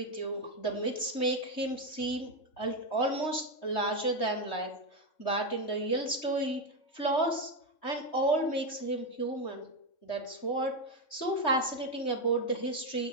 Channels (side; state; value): right; late; 3.2 ms